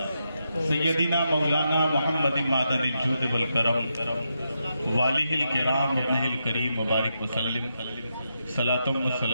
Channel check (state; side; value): inverted; both; correlation -0.84